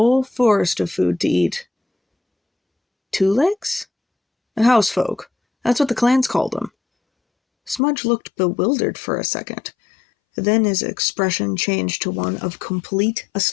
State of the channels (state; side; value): drops out; right; at 7.8 s